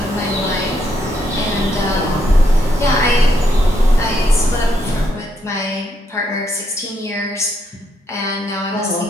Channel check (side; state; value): both; normal; correlation 0.76